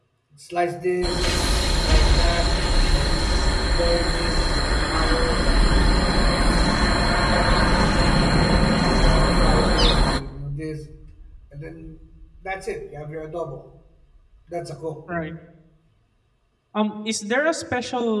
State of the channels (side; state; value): both; identical; correlation 1.00